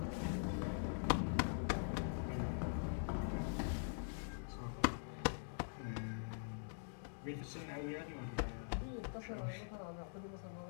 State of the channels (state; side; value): silent; right; digital silence